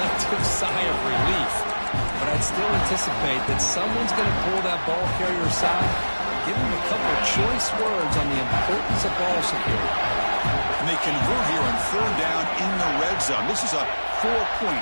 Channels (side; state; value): both; inverted; correlation -1.00